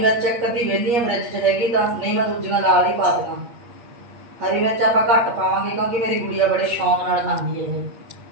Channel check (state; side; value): late; left; 8.5 ms